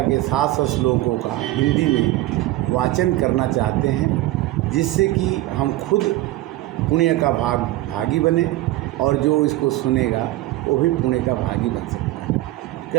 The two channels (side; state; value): left; quieter; 16.9 dB